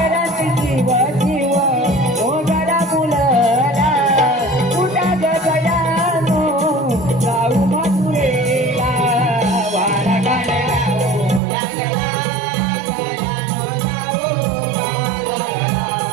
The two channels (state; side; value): drops out; left; at 11.4 s